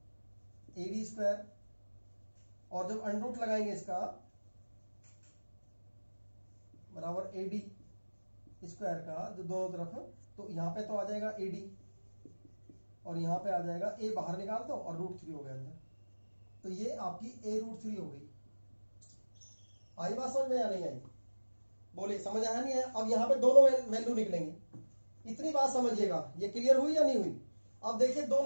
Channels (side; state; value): both; inverted; correlation -1.00